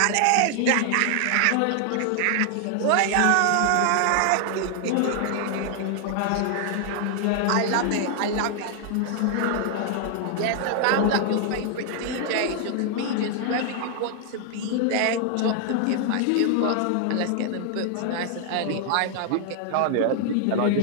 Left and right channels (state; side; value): different; both; correlation 0.00